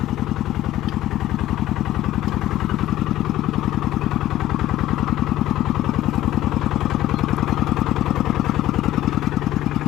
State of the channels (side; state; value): right; quieter; 14.1 dB